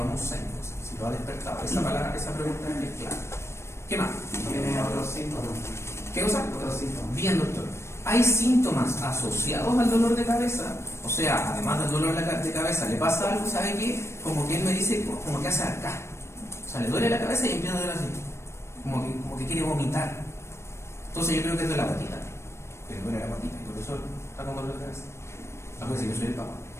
6 cosas. Si lo ha despertado. Esa palabra, esa pregunta es clave. ¿Qué más? Tiene otros síntomas. ¿Qué cosa? Otros síntomas. Bien, doctor. ¿Hay síntomas asociados al dolor de cabeza? O sea, además del dolor de cabeza, ¿le pasa algo? ¿Sabe qué? Como que él me dice, como que hace acá. O sea, le duele la cabeza y empieza a doler así. Como que quiere vomitar. Entonces yo creo que es de la patita. Que le duele la patita. Y por eso está con dolor de cabeza. A veces yo soy el papá.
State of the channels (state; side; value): late; right; 0.13 ms